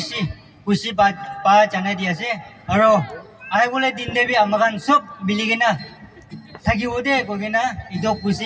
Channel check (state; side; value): identical; both; correlation 1.00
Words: kusi pa jana dia ase aro ai bole din de bi amagan sob biligina thagi ode kogina ido kusi